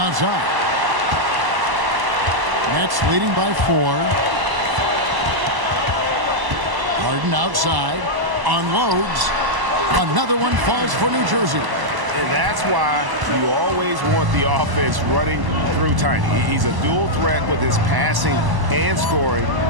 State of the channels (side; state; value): left; late; 1.0 ms